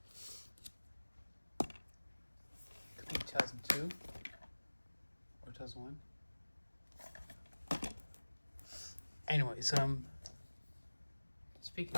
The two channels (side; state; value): both; inverted; correlation -1.00